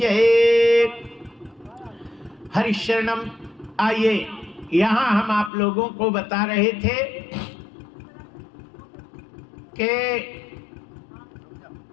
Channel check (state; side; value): drops out; right; at 5.5 s